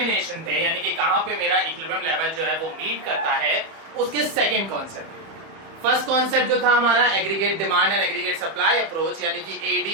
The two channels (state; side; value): late; left; 31 ms